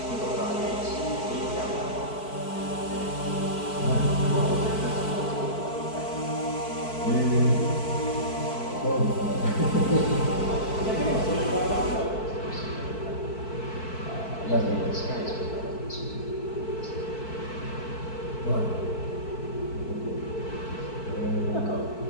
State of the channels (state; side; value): late; right; 4.5 ms